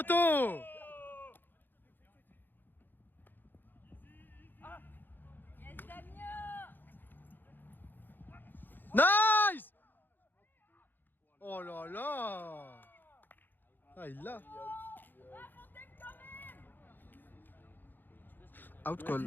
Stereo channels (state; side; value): late; right; 0.091 ms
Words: Yes, Damien! Nice! Oh là là! Ah, il l'a. Out